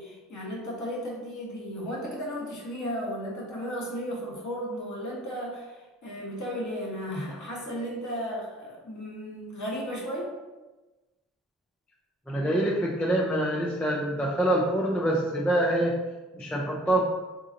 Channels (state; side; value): normal; both; correlation 0.54